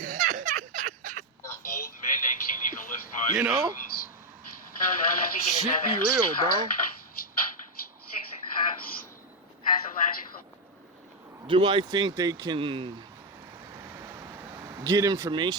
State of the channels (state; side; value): normal; both; correlation 0.04